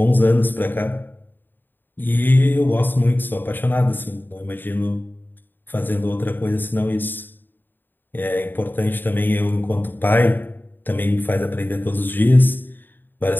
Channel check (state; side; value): late; right; 0.093 ms